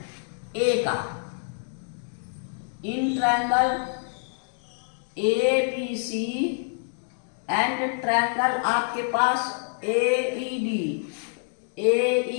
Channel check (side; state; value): right; silent; digital silence